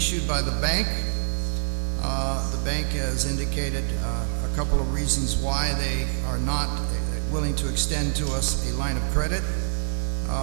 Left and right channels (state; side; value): silent; left; digital silence